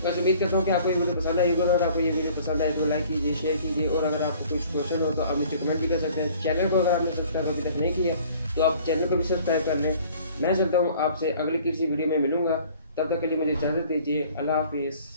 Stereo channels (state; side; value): inverted; both; correlation -0.52